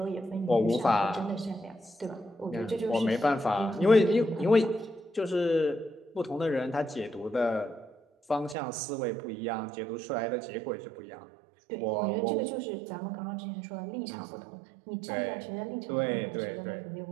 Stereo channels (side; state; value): left; drops out; at 8.6 s